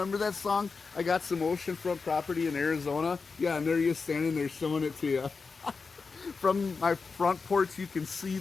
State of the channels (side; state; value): right; quieter; 4.7 dB